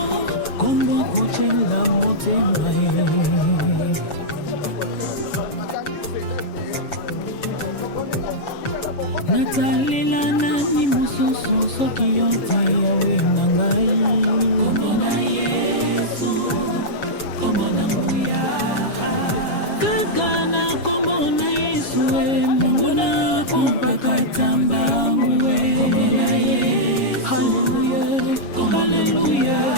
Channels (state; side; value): late; right; 7.2 ms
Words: kombo kochela motema ye. Natalela nani mosusu soki yo te yawe na ngai. Kombo na Yesu, kombo na nguya. Kaka na kombo na Yesu Mungu na kumpakata mbangu Hallelujah, hallelujah.